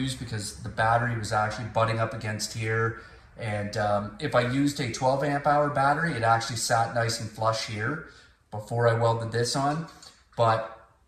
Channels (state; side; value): identical; both; correlation 1.00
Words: because the battery was actually butting up against here. And if I used a 12 amp hour battery, it actually sat nice and flush here before I welded this on. But